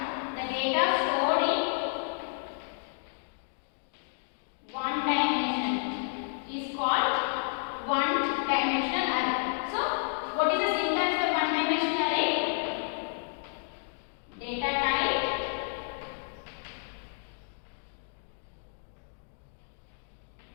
the data stored in one dimension is called one dimensional array. So what is the syntax for one dimensional array? Data type,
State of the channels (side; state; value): right; silent; digital silence